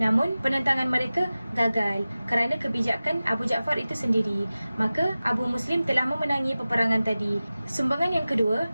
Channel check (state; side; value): inverted; both; correlation -0.96